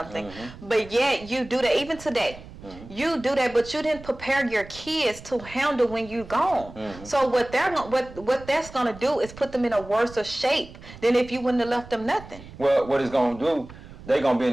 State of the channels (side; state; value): right; noise; rumble, 17 dB below the sound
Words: But yet you do that even today. You do that, but you didn't prepare your kids to handle when you're gone. So what that's gonna do is put them in a worse shape than if you wouldn't have left them nothing. Well, what it's gonna do? They're gonna be in